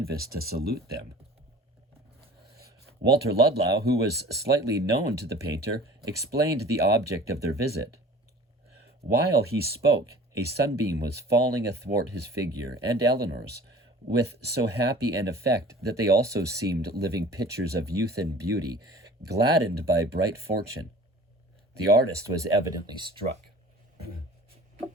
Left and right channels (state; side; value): normal; both; correlation 0.45